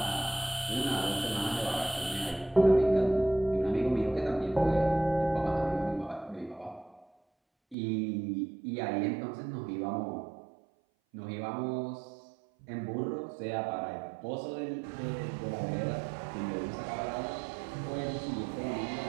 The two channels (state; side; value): drops out; left; at 7.8 s